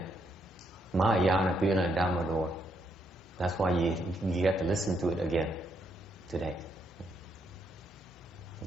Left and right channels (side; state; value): both; normal; correlation 0.76